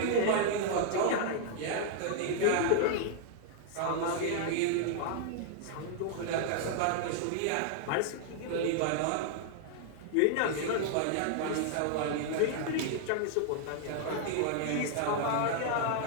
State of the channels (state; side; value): different; both; correlation -0.01